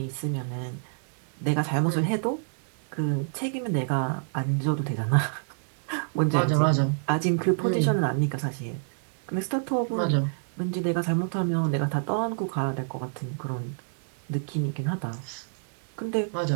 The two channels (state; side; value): silent; left; digital silence